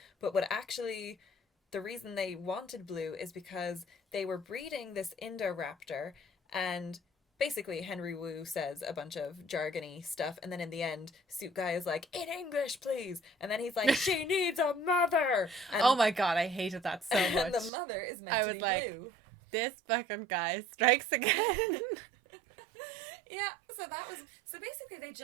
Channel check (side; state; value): left; drops out; at 17.7 s